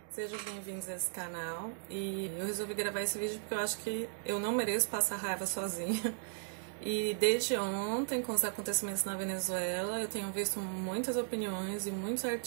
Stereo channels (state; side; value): silent; left; digital silence